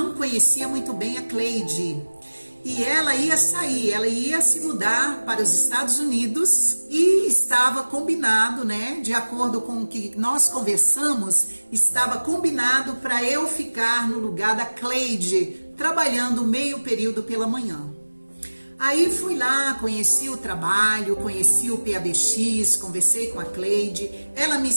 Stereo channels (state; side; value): inverted; both; correlation -1.00